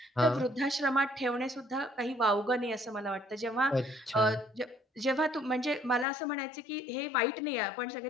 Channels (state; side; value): drops out; right; at 6.1 s